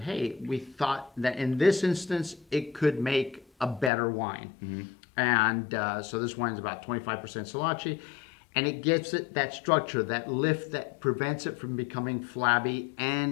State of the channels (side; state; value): right; drops out; at 3.9 s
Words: we thought that in this instance, it could make a better wine. And so this wine's about 25% Solange, and it gives it that structure, that lift that prevents it from becoming flabby,